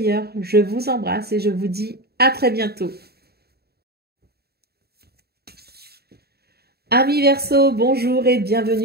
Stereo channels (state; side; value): late; left; 0.46 ms